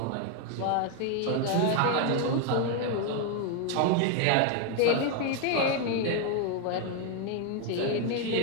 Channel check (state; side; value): different; both; correlation 0.01